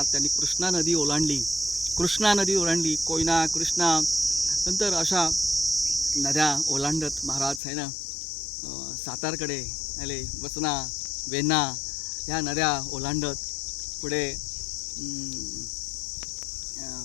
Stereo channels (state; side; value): drops out; right; at 7.6 s